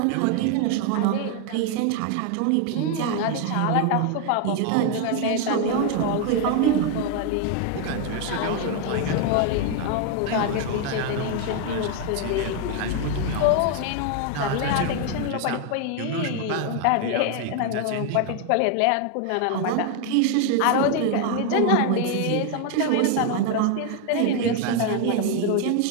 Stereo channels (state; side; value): different; both; correlation 0.01